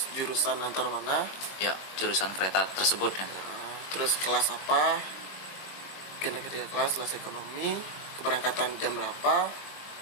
jurusan antar mana? Ya, jurusan kereta tersebut ya. Terus kelas apa? Ketiga kelas ekonomi, keberangkatan jam berapa,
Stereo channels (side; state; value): right; late; 22 ms